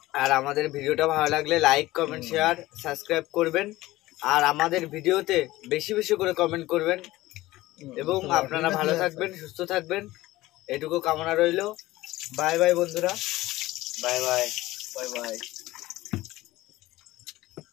আর আমাদের ভিডিওটা ভালো লাগলে লাইক কমেন্ট শেয়ার সাবস্ক্রাইব করবেন, আর আমাদের ভিডিওতে বেশি বেশি করে কমেন্ট করবেন, এবং আপনারা ভালো থাকবেন, সুস্থ থাকবেন, এটুকু কামনা রইল। বাই বাই বন্ধুরা, বাই বাই, বাই বাই।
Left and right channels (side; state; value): right; quieter; 17.8 dB